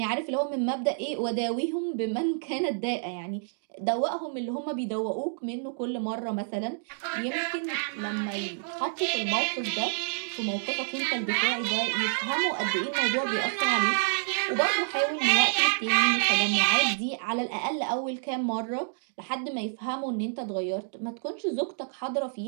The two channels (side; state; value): left; silent; digital silence